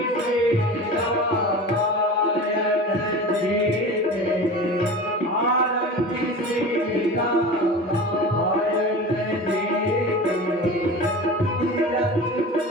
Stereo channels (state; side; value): normal; both; correlation 0.33